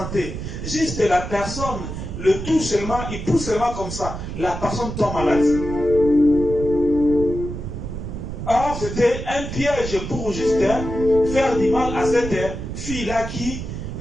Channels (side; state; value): right; noise; rumble, 7 dB below the sound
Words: Juste la personne le touche seulement, il pousse seulement comme ça, la personne tombe malade. Or, c'était un piège pour juste faire du mal à cette fille-là qui,